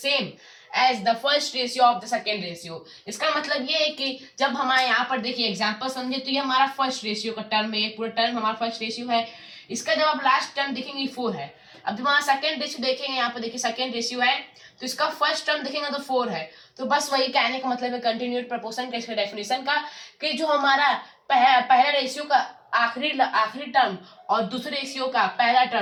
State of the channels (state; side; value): identical; both; correlation 1.00